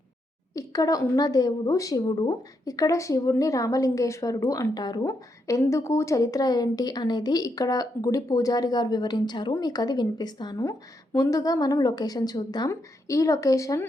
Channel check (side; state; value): both; normal; correlation 0.80